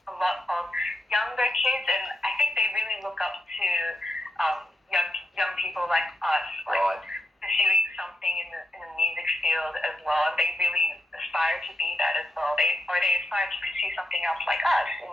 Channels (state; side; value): normal; both; correlation 0.85